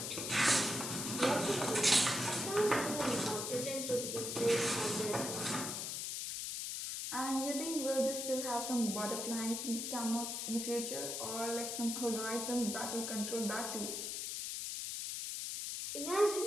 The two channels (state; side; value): noise; left; hiss, 3 dB below the sound